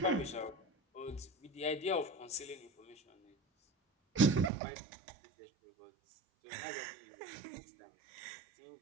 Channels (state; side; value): drops out; left; at 4.5 s